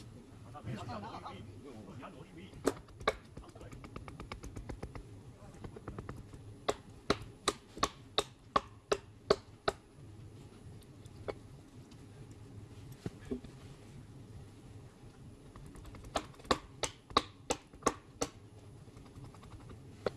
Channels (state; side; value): identical; both; correlation 1.00